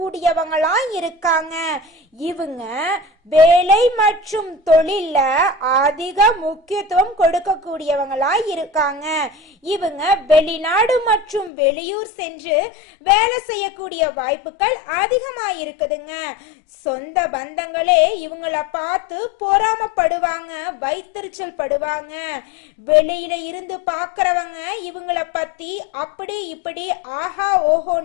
இருக்காங்க. இவங்க வேலை மற்றும் தொழில அதிக முக்கியத்துவம் கொடுக்கக்கூடியவங்களா இருக்காங்க. இவங்க வெளிநாடு மற்றும் வெளியூர் சென்று வேலை செய்யக்கூடிய வாய்ப்புகள் அதிகமா இருக்குதுங்க. சொந்த பந்தங்களே இவங்கள பார்த்து பொறாமப்படுவாங்க, வைத்தறிச்சல் படுவாங்க. வெளியில இருந்து பாக்குறவங்க இவங்கள பத்தி அப்படி இப்படி ஆஹா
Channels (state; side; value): drops out; right; at 11.5 s